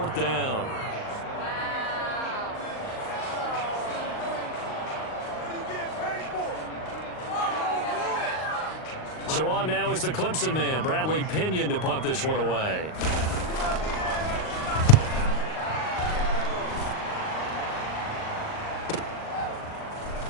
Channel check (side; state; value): right; late; 38 ms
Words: down. So on now is the Clemson man, Bradley Pinion, to punt this one away.